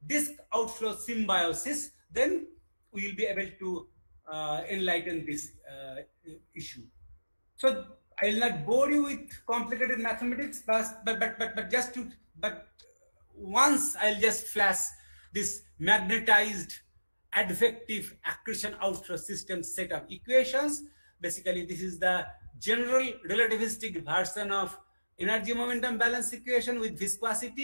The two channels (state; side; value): inverted; both; correlation -1.00